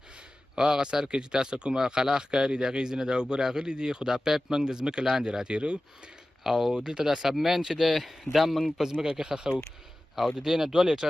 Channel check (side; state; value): both; normal; correlation 0.96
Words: او هغه سر کې چې تاسو کومه خلا ښکاري د هغې ځینې د اوبه راغلي دي، خو دا پایپ موږ د ځمکې لاندې راتېرو او دلته دا سبمین چې دی دا موږ په ځمکه کې ښخو او د دې نه 2